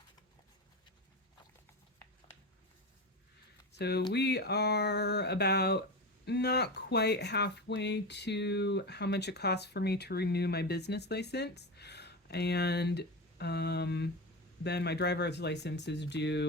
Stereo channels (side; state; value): both; normal; correlation 0.22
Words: So we are about not quite halfway to how much it costs for me to renew my business license. And then my driver's license is